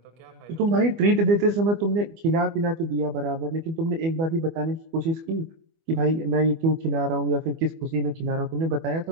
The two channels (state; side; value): late; left; 24 ms